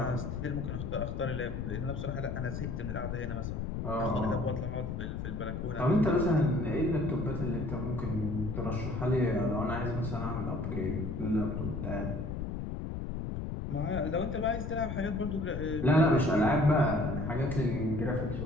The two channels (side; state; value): left; noise; rumble, 4 dB below the sound